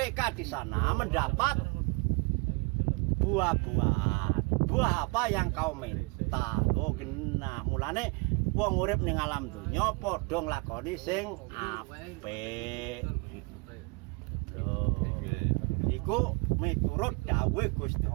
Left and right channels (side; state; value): left; quieter; 29.7 dB